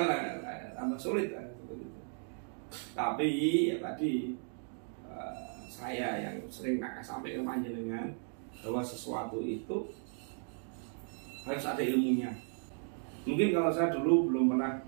tambah sulit lah, seperti itu. Tapi ya tadi saya yang sering sampai ke panjenengan bahwa sesuatu itu harus ada ilmunya. Mungkin kalau saya dulu belum pernah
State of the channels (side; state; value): left; silent; 54 dB below the other